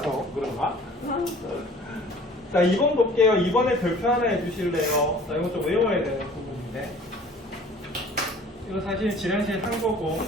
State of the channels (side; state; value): both; normal; correlation 0.49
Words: 그런가? 자, 2번 볼게요. 2번에 별표 하나 해주실래요? 자, 이거 좀 외워야 되는 부분인데. 이거 사실 지난시에 한 거고.